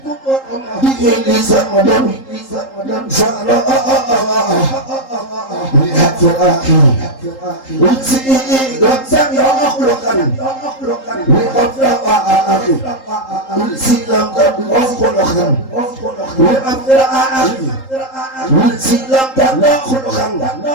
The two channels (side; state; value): right; late; 3.8 ms